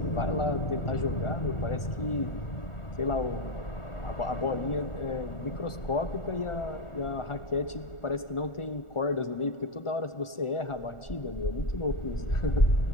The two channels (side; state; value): right; late; 1.4 ms